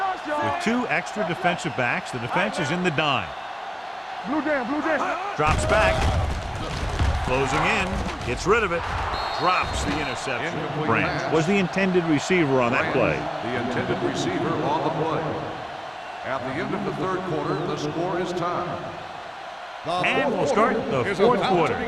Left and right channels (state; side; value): identical; both; correlation 1.00